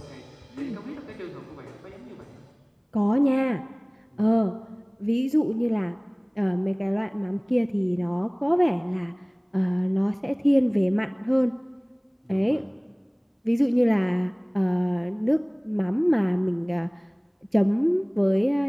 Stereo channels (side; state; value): both; identical; correlation 1.00